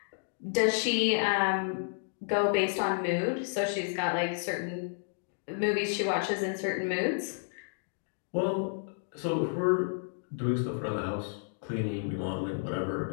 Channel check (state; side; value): silent; right; digital silence